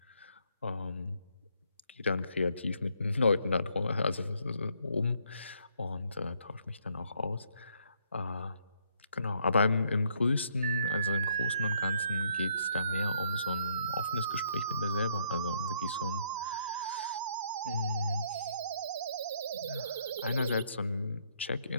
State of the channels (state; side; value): inverted; both; correlation -0.69